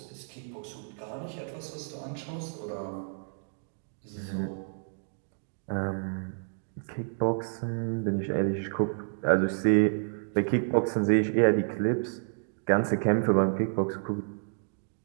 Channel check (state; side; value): silent; left; digital silence